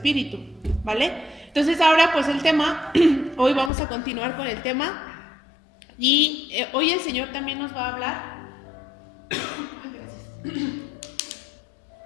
¿vale? Entonces ahora pues el tema, hoy vamos a continuar con el tema y hoy el Señor también nos va a hablar.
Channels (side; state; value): right; drops out; at 3.7 s